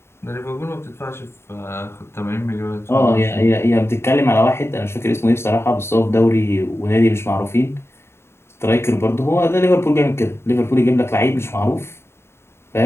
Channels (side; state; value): right; late; 0.12 ms